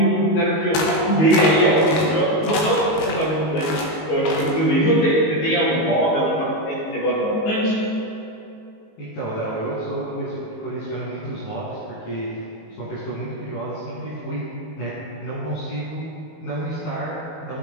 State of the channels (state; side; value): late; right; 19 ms